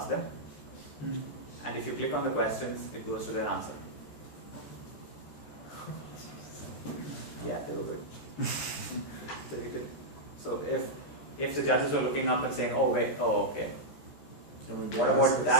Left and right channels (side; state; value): right; late; 13 ms